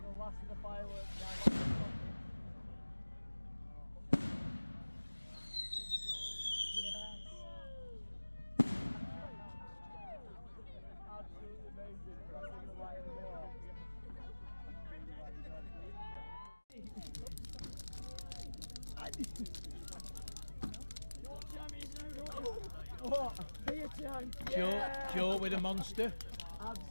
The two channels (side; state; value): both; inverted; correlation -1.00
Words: blasting the fireworks down. Absolutely amazing. Crossing the light of the wall. What? Be a time. Joe with a monster.